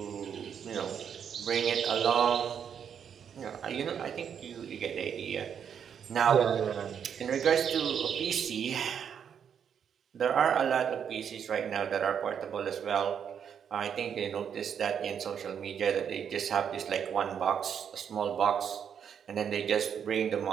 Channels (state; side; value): quieter; left; 7.9 dB